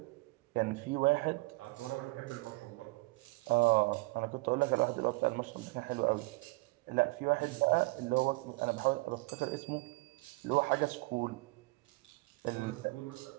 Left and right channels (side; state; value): left; quieter; 24.2 dB